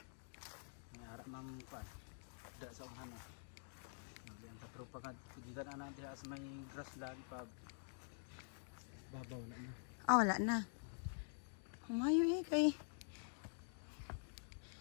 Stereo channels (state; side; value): silent; right; digital silence